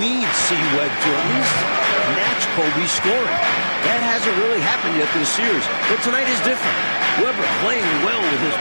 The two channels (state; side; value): inverted; both; correlation -1.00